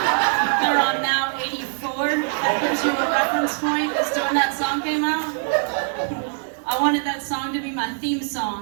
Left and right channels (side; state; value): left; silent; 60 dB below the other